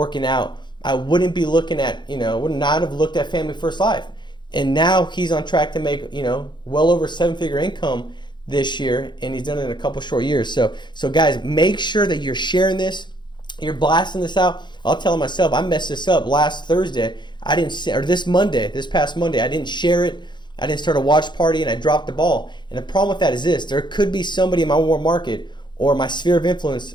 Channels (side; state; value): right; late; 0.22 ms